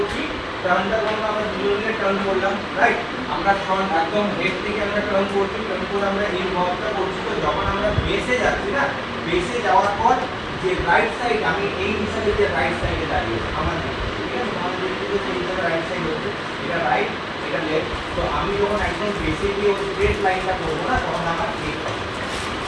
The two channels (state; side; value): identical; both; correlation 1.00